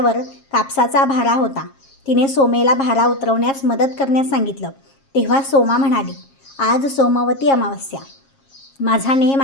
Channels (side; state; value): right; late; 7.4 ms